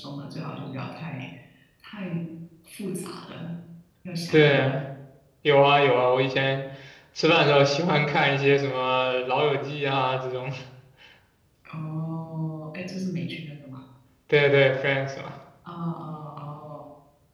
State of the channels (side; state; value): both; identical; correlation 1.00